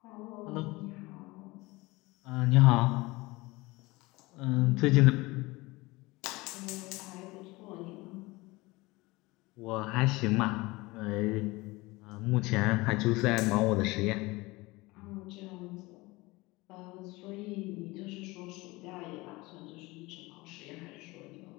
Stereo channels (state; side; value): quieter; right; 22.2 dB